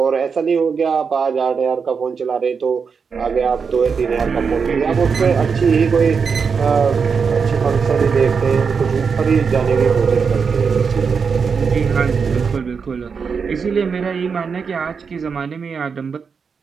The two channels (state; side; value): quieter; left; 5.8 dB